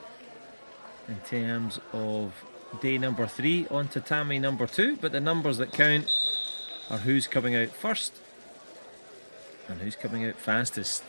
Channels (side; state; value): both; inverted; correlation -1.00